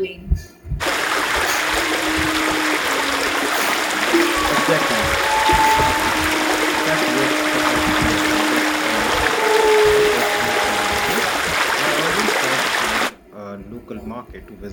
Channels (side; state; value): both; identical; correlation 1.00